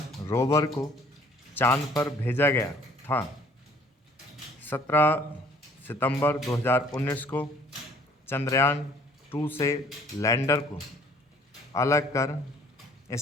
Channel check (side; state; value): both; normal; correlation 0.57